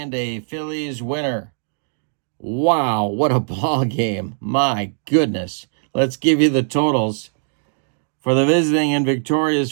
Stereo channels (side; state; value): left; silent; digital silence